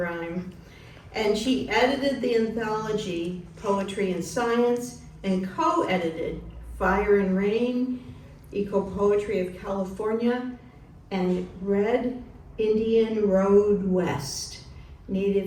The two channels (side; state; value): both; identical; correlation 1.00